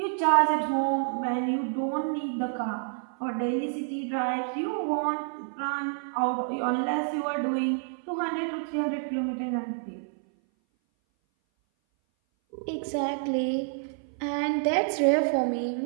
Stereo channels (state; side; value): silent; left; 57 dB below the other